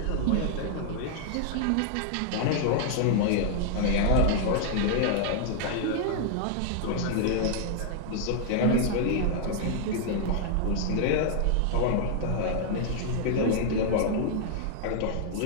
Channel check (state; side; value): different; both; correlation -0.01